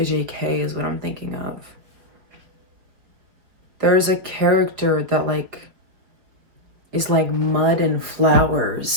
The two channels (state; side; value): late; left; 4.6 ms